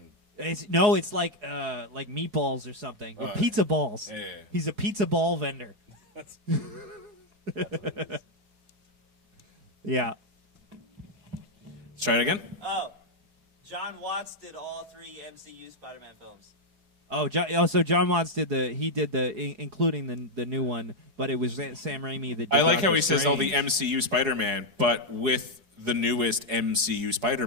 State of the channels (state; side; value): late; left; 4.7 ms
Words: It's like meatballs or something, or pizza balls. Yeah. He's a pizza ball vendor. Yeah. Let's try it again. Oh. John Watts did all 3 MCU Spider-Man films. So John Watts did including the new one, but it was Sam Raimi that did I like Doctor how he says all the Strange. MCU Spider-Man, but with the newest MCU